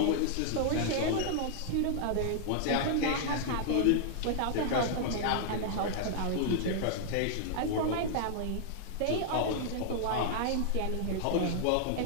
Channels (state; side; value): different; both; correlation -0.01